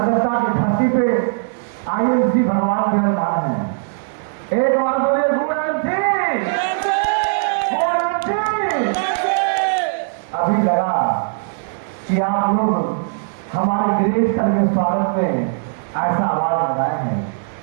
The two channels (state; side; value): silent; left; digital silence